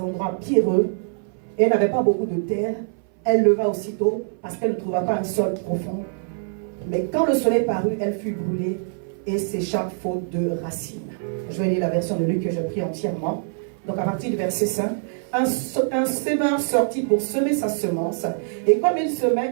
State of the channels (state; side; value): silent; left; 59 dB below the other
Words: endroits pierreux et elle n'avait pas beaucoup de terre. Elle leva aussitôt parce qu'elle ne trouva pas un sol profond. Mais quand le soleil parut, elle fut brûlée et sécha faute de racines. Je vais lire la version de Luc que j'ai pris entièrement. Donc à partir du verset 5, un semeur sortit pour semer sa semence, et comme il